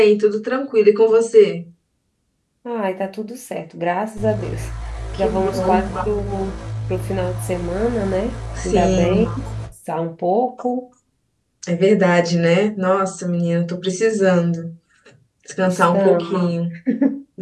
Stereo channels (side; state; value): both; identical; correlation 1.00